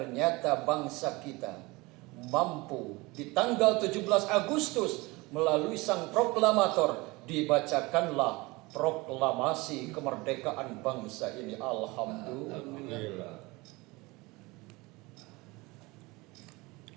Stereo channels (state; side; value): quieter; left; 23.4 dB